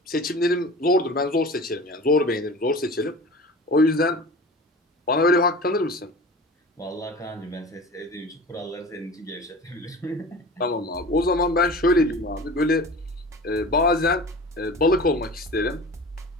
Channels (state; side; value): normal; both; correlation 0.37